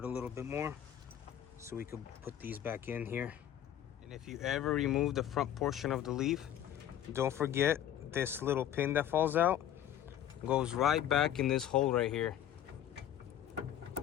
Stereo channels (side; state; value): right; quieter; 11.0 dB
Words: a little bit more so we could put these back in here. And if you ever remove the front portion of the leaf, don't forget this little pin that falls out goes right back in this hole right here.